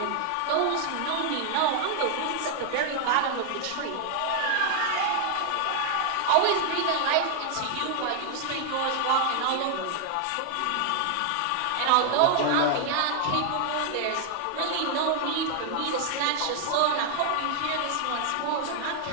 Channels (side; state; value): both; different; correlation 0.00